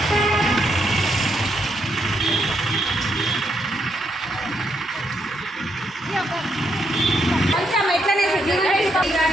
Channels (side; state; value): both; normal; correlation 0.78